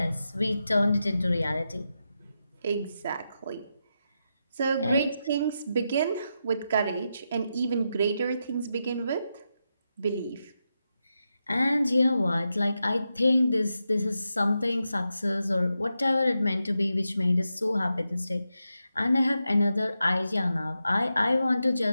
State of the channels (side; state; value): both; inverted; correlation -0.87